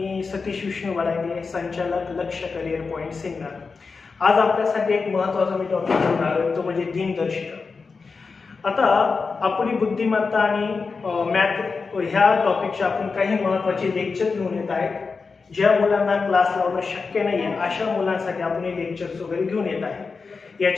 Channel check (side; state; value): right; quieter; 4.7 dB